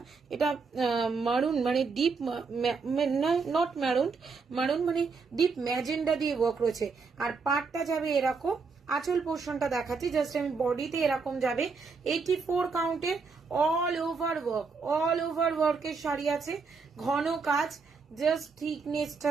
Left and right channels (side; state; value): left; quieter; 4.8 dB